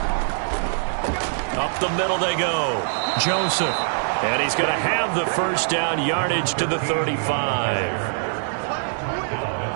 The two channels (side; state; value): left; silent; digital silence